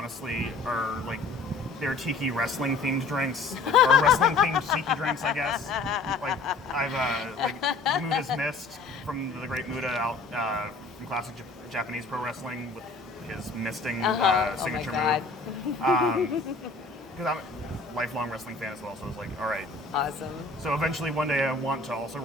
are like they're tiki wrestling themed drinks or wrestling themed tiki drinks, I guess. Like I've like Muda's Mist from the great Muda out from classic Japanese pro wrestling with his misting signature move. Because I'm a lifelong wrestling fan as well, so I was like, all right. Awesome. So eventually one day I want to also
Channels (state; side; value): quieter; right; 3.6 dB